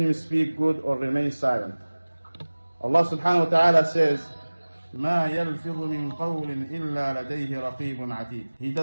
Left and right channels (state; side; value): inverted; both; correlation -1.00